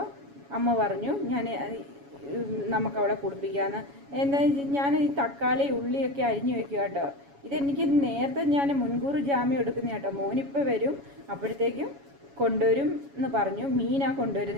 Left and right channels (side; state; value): left; late; 7.2 ms